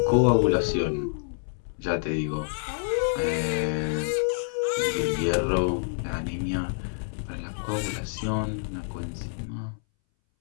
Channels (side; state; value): right; silent; 60 dB below the other